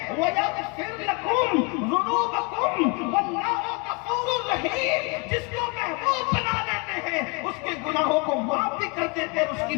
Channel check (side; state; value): right; quieter; 30.8 dB